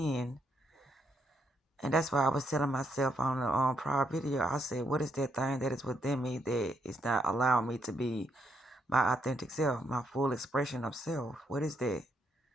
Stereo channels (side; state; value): both; normal; correlation 0.76